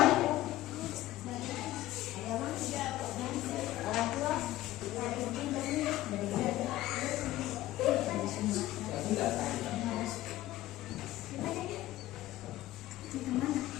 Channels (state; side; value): quieter; right; 15.5 dB